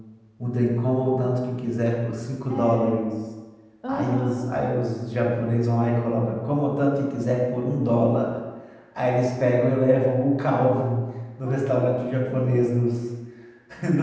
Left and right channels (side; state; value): both; identical; correlation 1.00